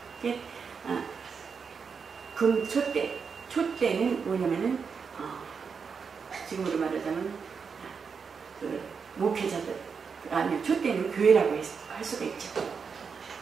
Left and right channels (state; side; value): quieter; left; 5.8 dB